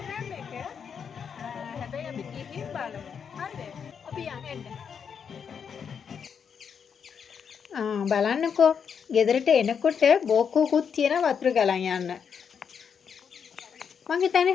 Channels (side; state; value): right; quieter; 7.0 dB